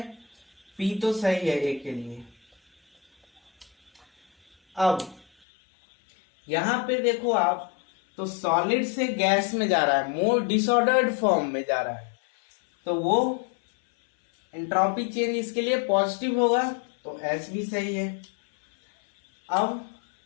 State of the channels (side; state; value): right; drops out; at 5.2 s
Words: P तो सही है A के लिए। अब यहां पे देखो आप, तो सॉलिड से गैस में जा रहा है, मोर डिसऑर्डर्ड फॉर्म में जा रहा है, तो वो एंट्रोपी चेंज इसके लिए पॉजिटिव होगा, तो S भी सही है। अब